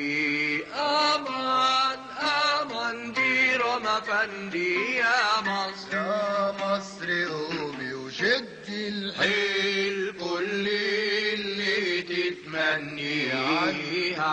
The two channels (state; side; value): identical; both; correlation 1.00